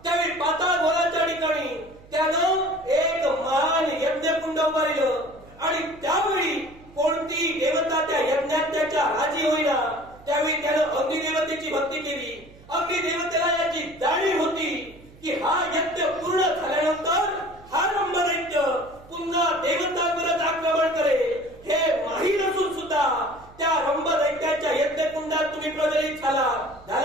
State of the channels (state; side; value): noise; right; hum, 23 dB below the sound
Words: त्यावेळी पाताळ गोलाच्या ठिकाणी त्यानं एक महान यज्ञकुंड उभारलं आणि त्यावेळी कोणती देवता त्या यज्ञात त्याच्या राजी होईना. त्यावेळी त्यानं अग्निदेवतेची भक्ती केली. अग्निदेवतेला याची जाणीव होती की हा यज्ञ पूर्ण झाल्यानंतर हा रंभदैत्य पुन्हा देवतांवरच आक्रमण करेल हे माहीत असून सुद्धा त्या रंभदैत्याच्या यज्ञकुंडात तुम्ही प्रज्वलित